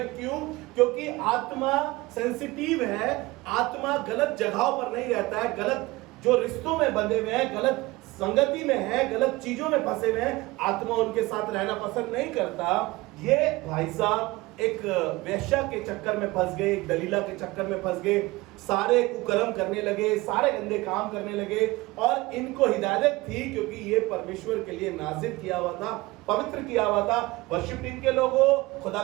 क्यों? क्योंकि आत्मा सेंसिटिव है। आत्मा गलत जगहों पर नहीं रहता है, गलत जो रिश्तों में बंधे हुए हैं, गलत संगति में है, गलत चीजों में फंसे हुए हैं, आत्मा उनके साथ रहना पसंद नहीं करता। ये भाई साहब एक वेश्या के चक्कर में फंस गए, एक दलीला के चक्कर में फंस गए, सारे कुकर्म करने लगे, सारे गंदे काम करने लगे। और इनको हिदायत थी, क्योंकि ये परमेश्वर के लिए नाजिर किया हुआ था, पवित्र किया हुआ था। वर्शिप टीम के लोगों, खुदा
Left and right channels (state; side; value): quieter; left; 21.1 dB